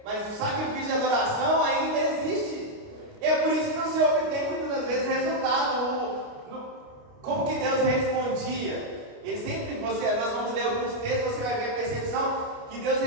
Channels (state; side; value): late; left; 29 ms